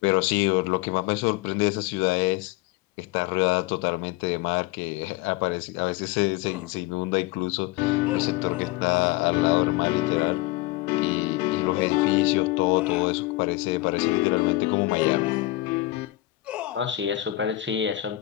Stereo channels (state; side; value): quieter; right; 17.4 dB